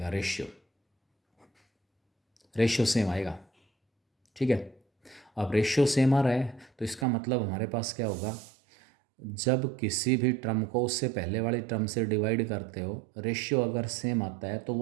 रेशियो सेम आएगा। ठीक है। अब रेशियो सेम आ रहा है तो इसका मतलब हमारे पास क्या होगा, जब किसी भी टर्म को उससे पहले वाली टर्म से डिवाइड करते हो रेशियो अगर सेम आता है तो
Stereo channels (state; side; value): drops out; left; at 7.1 s